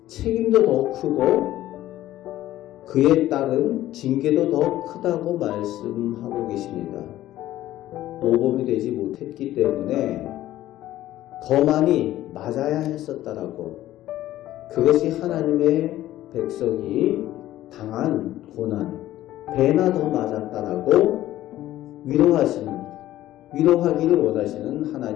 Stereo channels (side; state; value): right; quieter; 14.3 dB